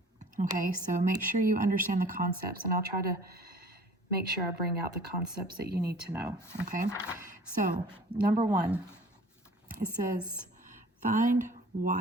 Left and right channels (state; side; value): normal; both; correlation 0.48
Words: Okay, so make sure you understand the concepts, and I'll try to make sure I bring out the concepts that you need to know, okay? So, number one, it says, find